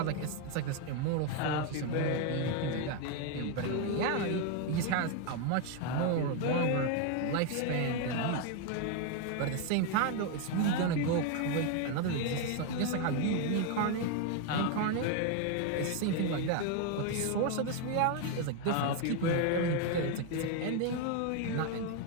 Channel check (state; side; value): different; both; correlation 0.01